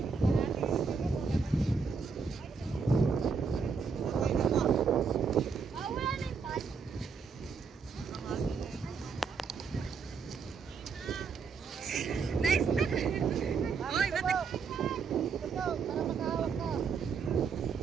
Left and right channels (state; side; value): quieter; left; 5.4 dB